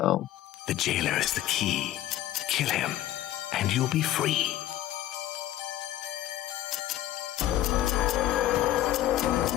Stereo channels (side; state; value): right; quieter; 13.6 dB